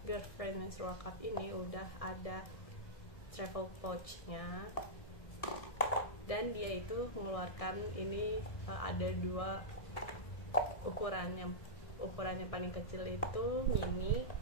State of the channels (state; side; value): late; right; 1.7 ms